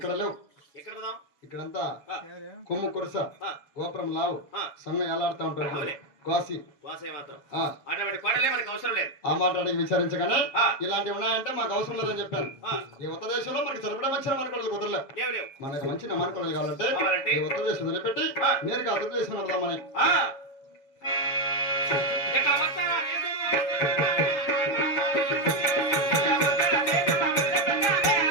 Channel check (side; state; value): right; late; 7.0 ms